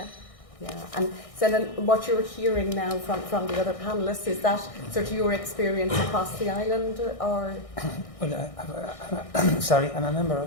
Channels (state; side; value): late; right; 1.6 ms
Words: Yeah, and so then what you're hearing now from the other panellists, is that sort of your experience across the island, or? Well, I'm a member